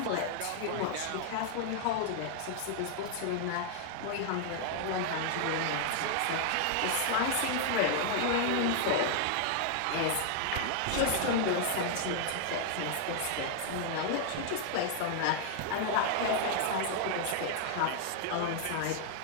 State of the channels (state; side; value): different; both; correlation 0.00